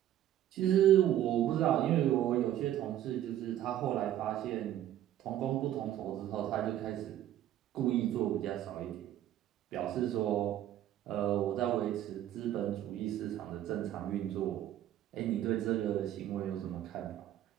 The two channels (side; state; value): left; quieter; 12.1 dB